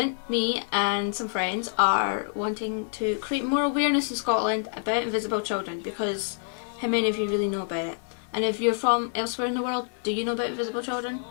me and some friends are wanting to create more awareness in Scotland about invisible children, because how many of you really know about it? And if you're from elsewhere in the world, do you know about invisible children?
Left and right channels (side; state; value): right; silent; digital silence